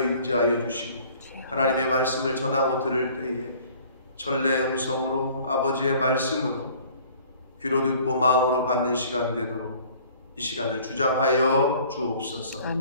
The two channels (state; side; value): inverted; both; correlation -0.53